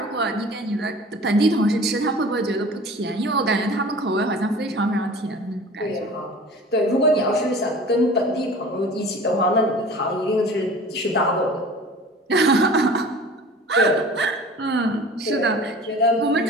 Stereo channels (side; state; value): both; normal; correlation 0.42